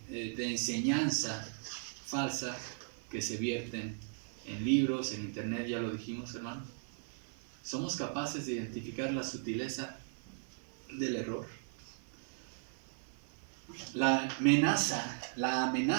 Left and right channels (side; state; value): left; silent; 53 dB below the other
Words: enseñanza falsa que se vierten en libros, en internet, ya lo dijimos, hermanos. ¿Somos capaces de identificar la sutileza del error? La